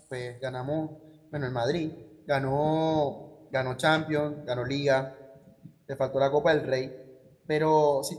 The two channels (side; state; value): both; identical; correlation 1.00